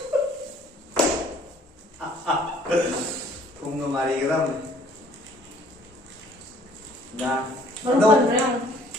thùng người mà đi cái đâu dạ Baru đâu pa rin.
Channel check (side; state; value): both; normal; correlation 0.57